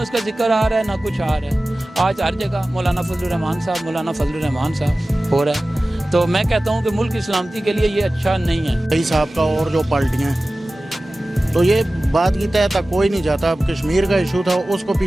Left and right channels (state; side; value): normal; both; correlation 0.96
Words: اس کا ذکر آ رہا ہے نہ کچھ آ رہا ہے۔ آج ہر جگہ مولانا فضل الرحمان صاحب، مولانا فضل الرحمان صاحب ہو رہا ہے، تو میں کہتا ہوں کہ ملک کی سلامتی کے لیے یہ اچھا نہیں ہے۔ کئی صاحب کا اور جو پارٹیاں تو یہ بات کی تہ تک کوئی نہیں جاتا۔ اب کشمیر کا ایشو تھا، اس کو